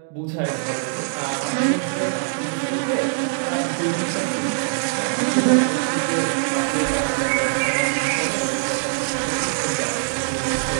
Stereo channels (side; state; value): left; silent; digital silence